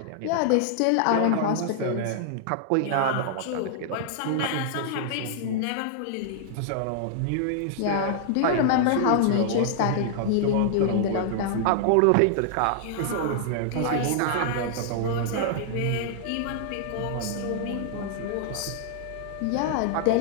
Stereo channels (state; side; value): different; both; correlation -0.01